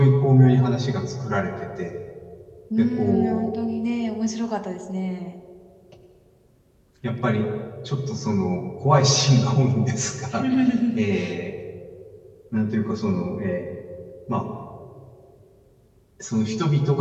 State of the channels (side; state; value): both; identical; correlation 1.00